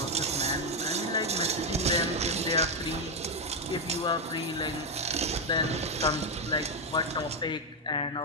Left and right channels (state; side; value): normal; both; correlation 0.04